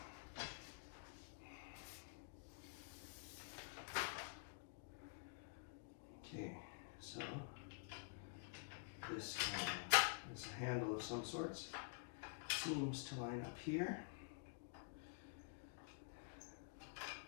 Okay, so this is a handle of some sorts. Seems to line up here.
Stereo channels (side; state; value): right; quieter; 34.1 dB